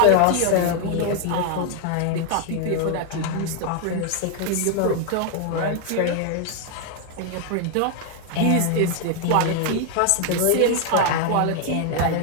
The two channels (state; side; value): different; both; correlation 0.00